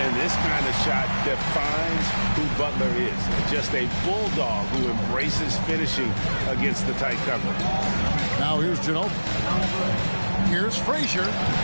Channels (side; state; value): both; inverted; correlation -1.00